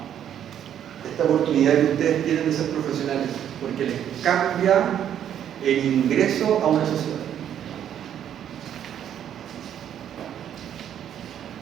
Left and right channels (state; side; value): quieter; left; 9.9 dB